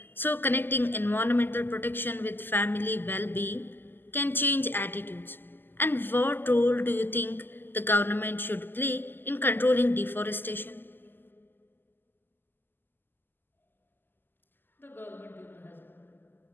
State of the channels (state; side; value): late; right; 0.094 ms